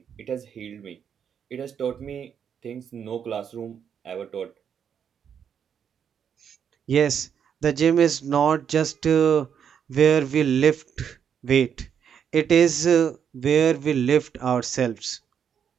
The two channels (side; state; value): left; quieter; 7.9 dB